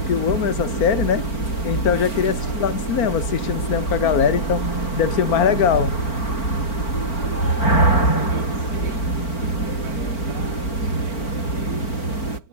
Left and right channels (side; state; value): right; late; 4.4 ms